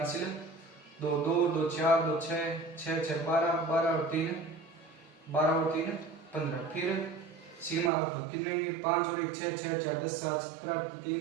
2 2 2 4 2 6 6 6 12, 12 और 3 12 और 3 15। फिर सिग्मा कितने आएंगे? 5 और 1 6 6 4 10 7 17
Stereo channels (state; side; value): drops out; left; at 7.9 s